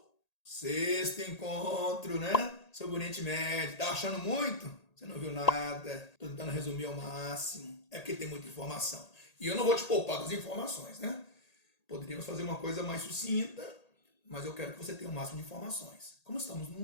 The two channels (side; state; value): right; late; 1.8 ms